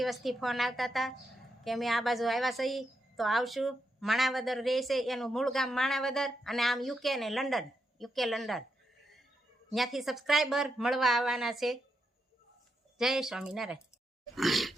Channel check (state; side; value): normal; both; correlation 0.83